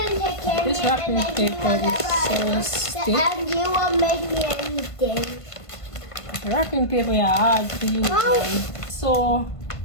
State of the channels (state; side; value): late; right; 1.5 ms